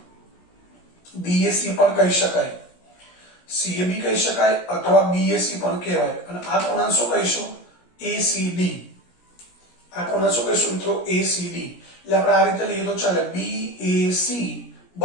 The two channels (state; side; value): late; right; 17 ms